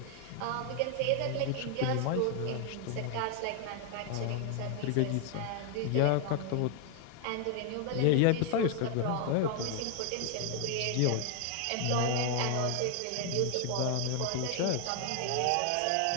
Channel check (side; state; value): both; different; correlation 0.00